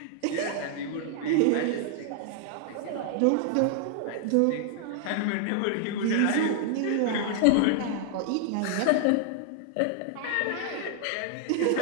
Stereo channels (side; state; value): both; different; correlation 0.00